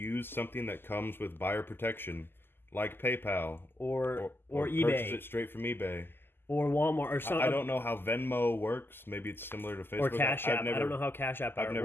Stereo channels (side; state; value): right; late; 0.10 ms